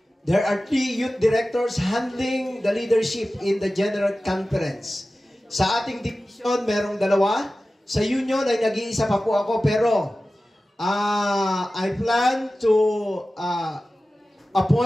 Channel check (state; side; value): normal; both; correlation 0.95